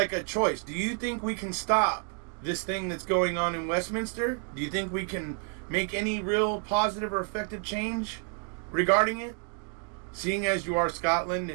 a choice. Do you think we can stop this thing that's going on in Westminster? Do you think we can make any real positive or effective change regarding it? Seeing as you are Scotland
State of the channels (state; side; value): quieter; left; 38.8 dB